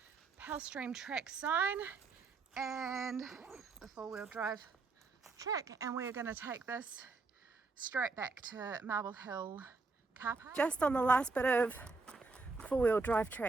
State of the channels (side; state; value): left; quieter; 4.0 dB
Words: Pell Stream track sign and the four-wheel drive track, and we're going to take this straight back to Marble Hill carpark. Just on the last bit of four-wheel drive